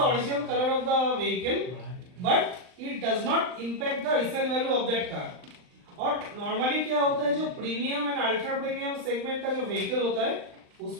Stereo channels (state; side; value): late; left; 39 ms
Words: original color of the vehicle but it does not impact the resale value of that car। और नॉर्मली क्या होता है, जो premium and ultra premium segment का जो व्हीकल होता है